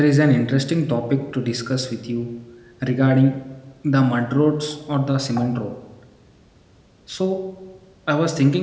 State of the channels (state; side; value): identical; both; correlation 1.00